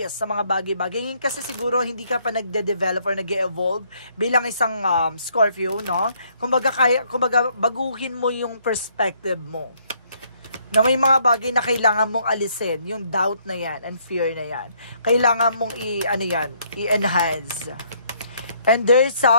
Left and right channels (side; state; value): both; inverted; correlation -0.68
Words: sa mga bagay-bagay. Ngayon kasi siguro hindi ka pa nagde-develop or nag-evolve bilang isang Scorpio, no? Kumbaga baguhin mo yung perspective mo. Na may mga bagay na kailangan mong alisin, yung doubt na yan and fear na yan. Kailangan mong i-enhance. And there's